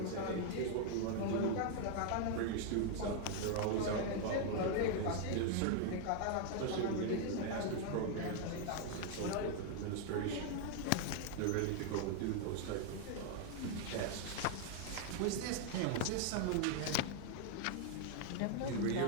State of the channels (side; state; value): both; different; correlation 0.00